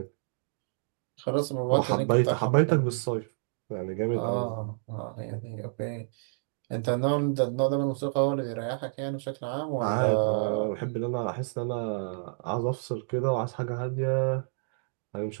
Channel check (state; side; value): silent; left; digital silence